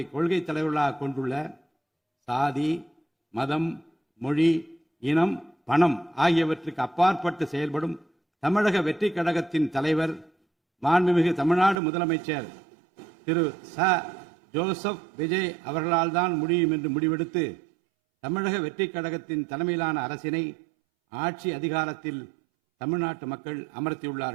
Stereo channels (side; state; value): left; drops out; at 11.8 s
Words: கொள்கை தலைவர்களாக கொண்டுள்ள சாதி, மதம், மொழி, இனம், பணம் ஆகியவற்றுக்கு அப்பாற்பட்டு செயல்படும் தமிழக வெற்றி கழகத்தின் தலைவர் மாண்புமிகு தமிழ்நாடு முதலமைச்சர் திரு ஜோசப் விஜய் அவர்களால் தான் முடியும் என்று முடிவெடுத்து தமிழக வெற்றி கழகத்தின் தலைமையிலான அரசினை ஆட்சி அதிகாரத்தில் தமிழ்நாட்டு மக்கள்